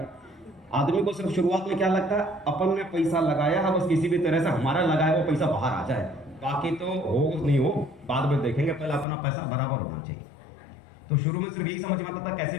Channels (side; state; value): right; drops out; at 9.1 s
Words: आदमी को सिर्फ शुरुआत में क्या लगता है, अपन ने पैसा लगाया है, बस किसी भी तरह से हमारा लगाया वो पैसा बाहर आ जाए, बाकी तो हो नहीं हो बाद में देखेंगे, पहले अपना पैसा बराबर होना चाहिए। तो शुरू में सिर्फ यही समझ में आता था कैसे